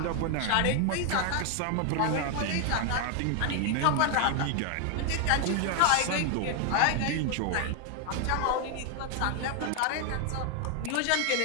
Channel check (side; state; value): both; different; correlation 0.01